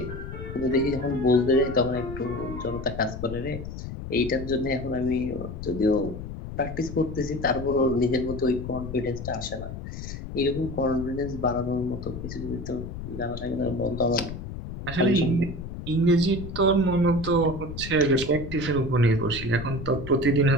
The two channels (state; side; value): noise; left; rumble, 9 dB below the sound